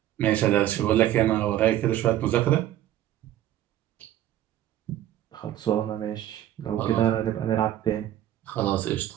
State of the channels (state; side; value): quieter; left; 12.7 dB